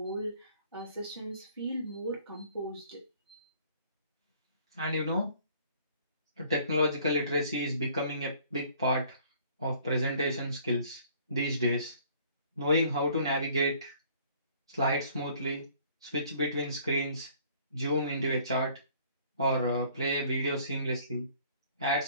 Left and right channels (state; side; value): inverted; both; correlation -0.57